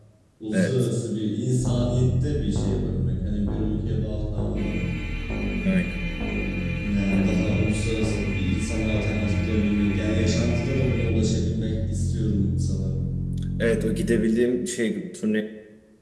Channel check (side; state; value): both; identical; correlation 1.00